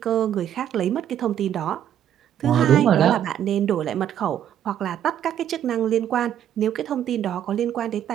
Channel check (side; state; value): left; quieter; 10.2 dB